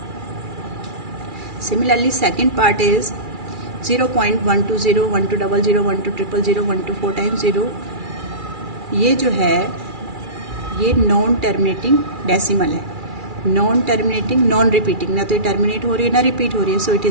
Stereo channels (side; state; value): left; late; 2.4 ms